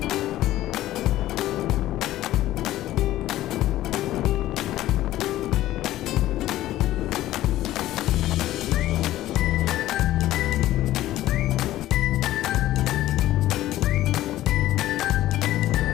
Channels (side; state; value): right; quieter; 14.6 dB